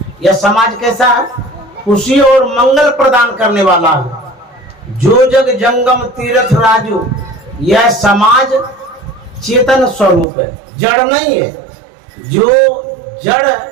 यह समाज कैसा है? खुशी और मंगल प्रदान करने वाला है। जो जग जंगम तीर्थ राजू। यह समाज चेतन स्वरूप है, जड़ नहीं है। जो जड़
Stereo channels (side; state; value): left; drops out; at 10.2 s